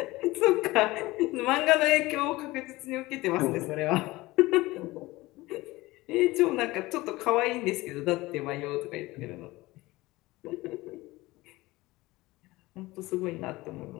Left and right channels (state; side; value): quieter; right; 19.9 dB